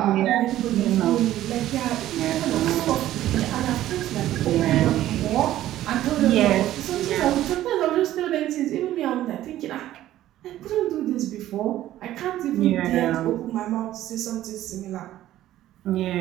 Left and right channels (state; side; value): quieter; left; 13.7 dB